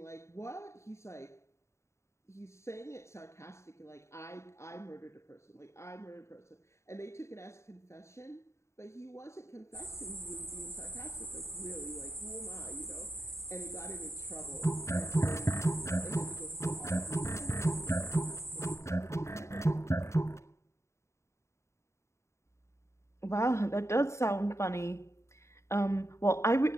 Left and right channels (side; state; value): right; late; 0.14 ms